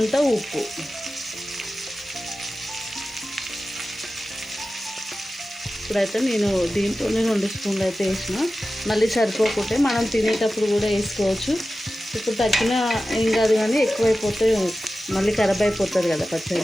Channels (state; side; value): normal; both; correlation 0.94